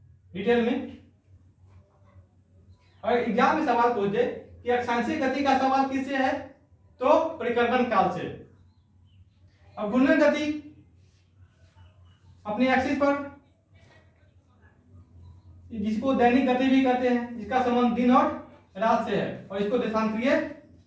डिटेल में। और एग्जाम में सवाल पूछ दे कि अक्षांशीय गति का सवाल किससे है, तो परिक्रमण काल से। अब घूर्णन गति अपने एक्सिस पर, जिसको दैनिक गति भी कहते हैं, जिसका संबंध दिन और रात से है, और इसको देशांतरीय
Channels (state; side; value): identical; both; correlation 1.00